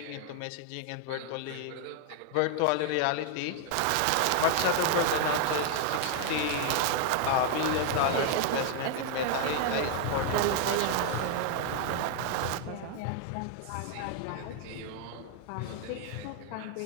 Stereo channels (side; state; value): both; different; correlation 0.00